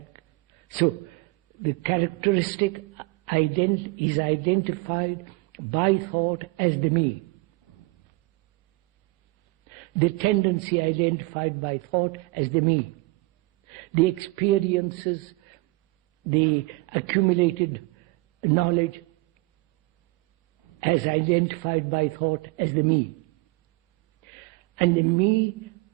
So, the characteristic is identified by thought as the me. The tendency identified by thought as the me. The experiences, the accumulated knowledge as identified by thought as the me. And the me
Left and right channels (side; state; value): left; quieter; 24.6 dB